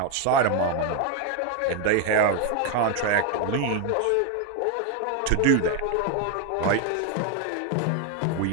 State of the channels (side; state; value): both; different; correlation 0.01